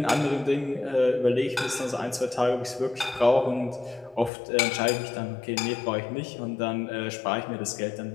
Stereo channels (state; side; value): drops out; right; at 4.3 s